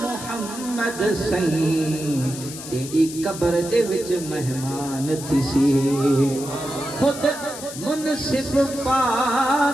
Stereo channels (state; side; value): noise; left; hiss, 11 dB below the sound